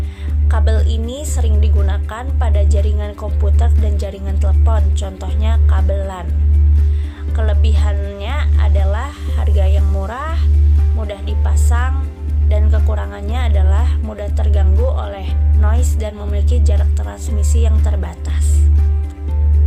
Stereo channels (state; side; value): identical; both; correlation 1.00